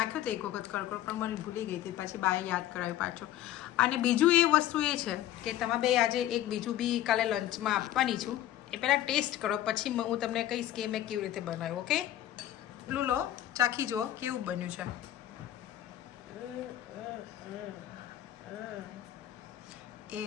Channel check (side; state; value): right; quieter; 13.0 dB